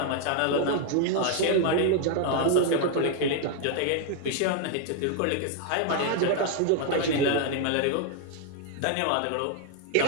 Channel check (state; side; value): different; both; correlation 0.00